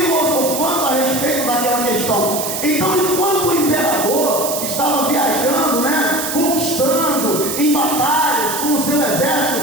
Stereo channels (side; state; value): right; noise; hiss, 4 dB below the sound